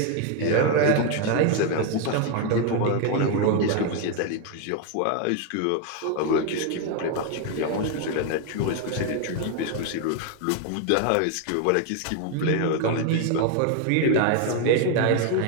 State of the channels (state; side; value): different; both; correlation 0.01